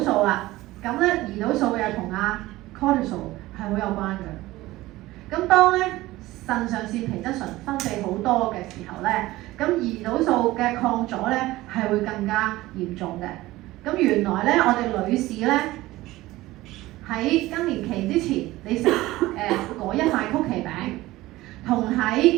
素啦。咁咧胰島素又同阿 cortisol 係好有關嘅。咁當咧腎上腺皮質醇分泌好多嘅時候咧，咁胰島素嘅抗阻咧係會更加嚴重嘅。咁原來咧我哋女士咧喺更年期之前，你食嗰一塊曲奇餅，同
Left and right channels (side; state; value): left; quieter; 17.9 dB